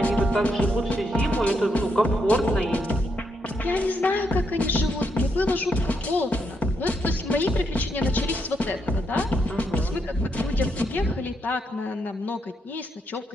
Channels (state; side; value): normal; both; correlation 0.79